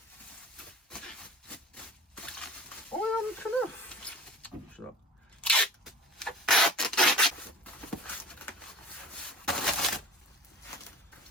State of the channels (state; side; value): normal; both; correlation 0.41